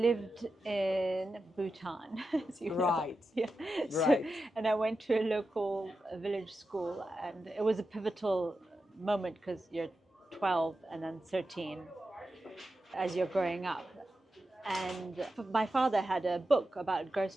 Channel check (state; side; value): normal; both; correlation 0.90